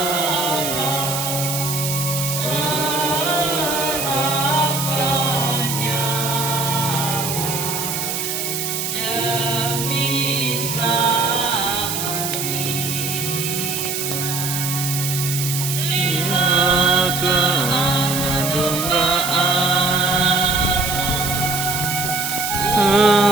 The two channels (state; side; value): noise; right; hiss, 3 dB below the sound